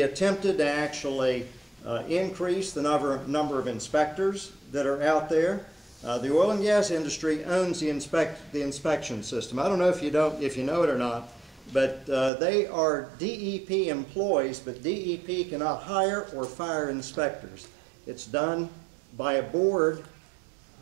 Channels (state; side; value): drops out; left; at 12.3 s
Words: attempted to actually increase the number of inspectors that are out there. The oil and gas industry owns the inspection system. I don't know if you know it or not, but they are DEP employees, but DEP cannot hire or fire inspectors. It's done by a board